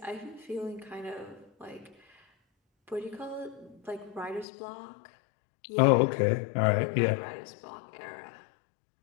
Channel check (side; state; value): right; drops out; at 4.5 s